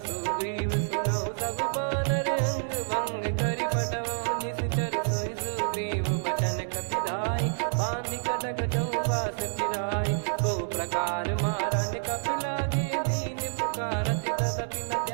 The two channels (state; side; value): silent; left; digital silence